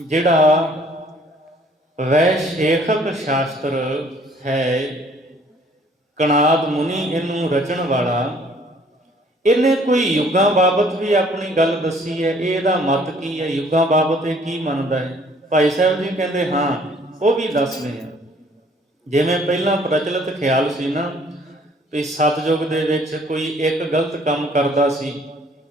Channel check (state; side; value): normal; both; correlation 0.58